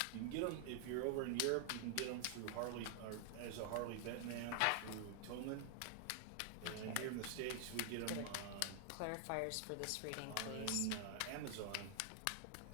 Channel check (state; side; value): different; both; correlation 0.00